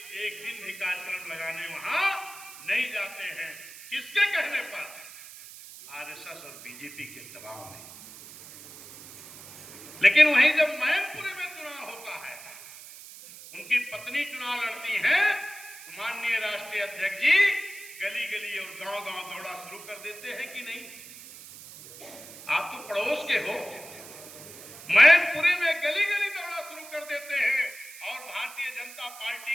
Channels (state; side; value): noise; right; hiss, 16 dB below the sound